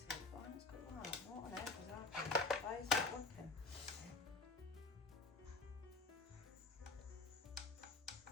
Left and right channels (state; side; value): quieter; right; 3.5 dB